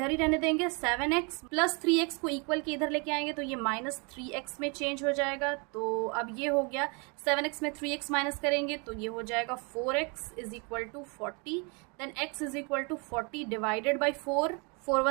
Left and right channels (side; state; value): left; quieter; 32.7 dB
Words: ही रहने देंगे, 7x प्लस 3x को इक्वल के इधर लेके आएंगे तो ये माइनस 3x में चेंज हो जाएगा। तो अब ये हो गया 7x में 3x माइनस करेंगे तो ये हो जाएगा 4x is equal to 40। Then x is equal to 40 divided by 4, 4